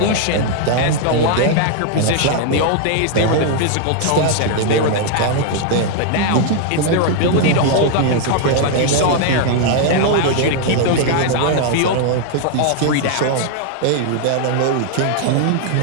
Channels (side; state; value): both; different; correlation 0.00